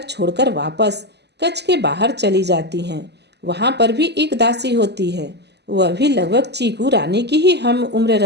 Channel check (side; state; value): left; late; 0.49 ms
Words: छोड़कर वापस कच्छ के बाहर चली जाती हैं। वहां पर भी एक दासी होती है। वह भी लगभग चीकू रानी की ही हम उम्र